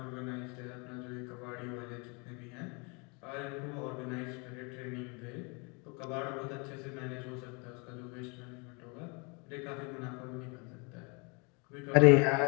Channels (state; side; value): quieter; right; 31.7 dB